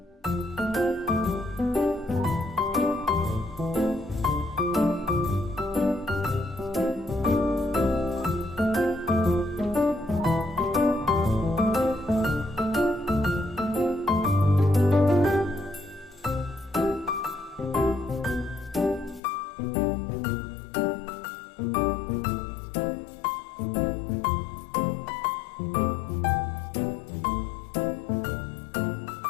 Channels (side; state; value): right; drops out; at 19.2 s